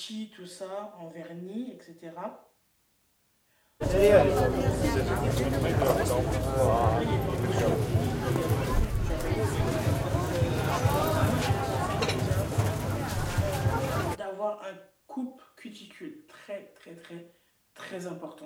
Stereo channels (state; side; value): identical; both; correlation 1.00